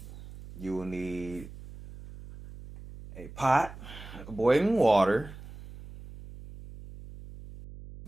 You will need a pot of boiling water.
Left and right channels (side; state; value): right; noise; hum, 15 dB below the sound